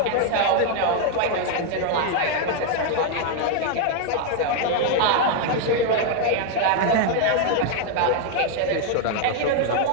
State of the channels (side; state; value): both; different; correlation 0.01